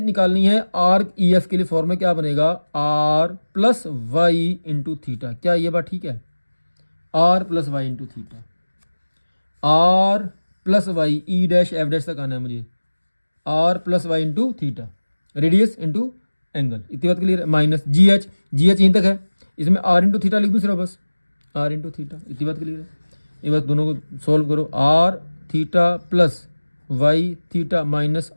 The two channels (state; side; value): inverted; both; correlation -1.00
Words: निकालनी है आर्क ई एफ के लिए फॉर्मूला क्या बनेगा, R plus Y into theta. क्या ये बात ठीक है, R plus Y into theta. R plus Y, E dash F dash तक आना है मुझे, R plus Y into theta, radius into angle. इतनी बात क्लियर है। Minus G H, G H यहीं तक है, इसमें आर इंटू थीटा लिख दूँ सिर्फ बस, आर इंटू थीटा। इतनी बात क्लियर है। ये बस दोनों को सॉल्व करो, R theta plus Y theta minus